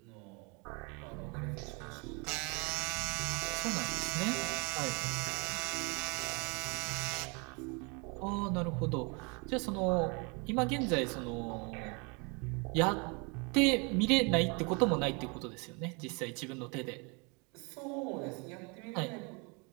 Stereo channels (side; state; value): left; quieter; 31.9 dB